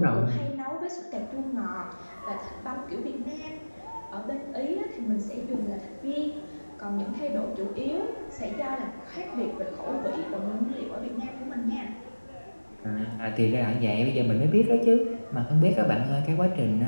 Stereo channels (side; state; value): both; inverted; correlation -1.00